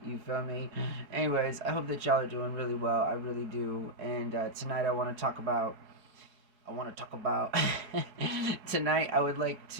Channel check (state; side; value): late; left; 4.7 ms